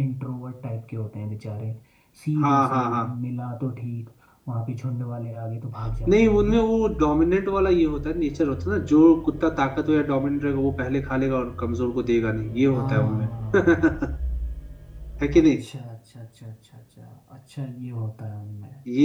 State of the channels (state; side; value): identical; both; correlation 1.00